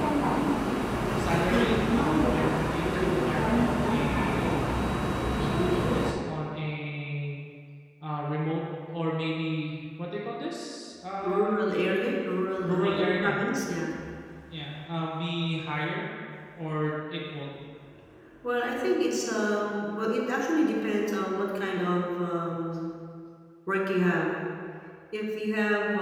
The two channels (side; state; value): both; identical; correlation 1.00